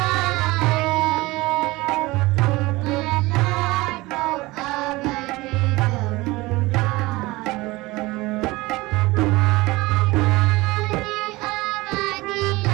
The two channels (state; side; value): quieter; left; 21.0 dB